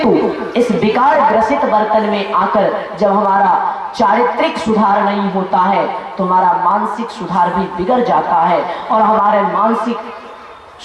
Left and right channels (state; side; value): identical; both; correlation 1.00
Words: इस विकार ग्रसित बर्तन में आकर जब हमारा चारित्रिक सुधार नहीं होता है तो हमारा मानसिक सुधार भी बिगड़ जाता है, और हमारे मानसिक